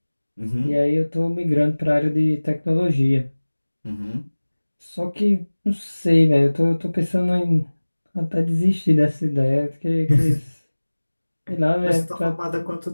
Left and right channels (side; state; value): both; inverted; correlation -1.00